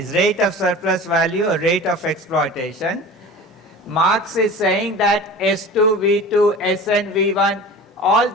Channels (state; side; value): normal; both; correlation 0.37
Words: rate of surplus value or rate of exploitation. Marx is saying that S2, V2, Sn, V1, all